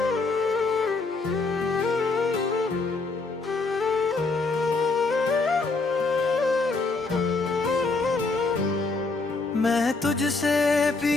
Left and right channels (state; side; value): quieter; right; 3.8 dB